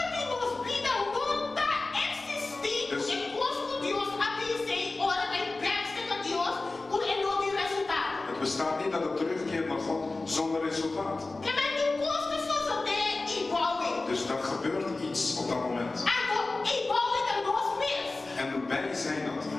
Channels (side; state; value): right; quieter; 3.3 dB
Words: Het bestaat niet dat het terugkeert naar God zonder resultaat. Dus dat gebeurt iets op dat moment. En wij zijn dat.